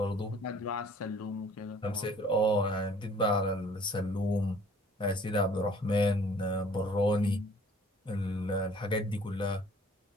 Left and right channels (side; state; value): both; normal; correlation 0.54